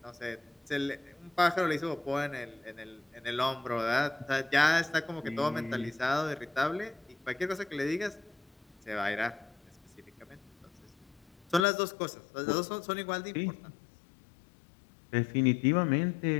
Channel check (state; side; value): drops out; right; at 11.7 s